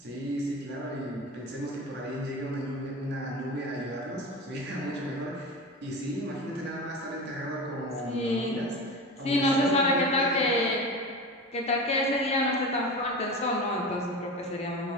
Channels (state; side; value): normal; both; correlation 0.28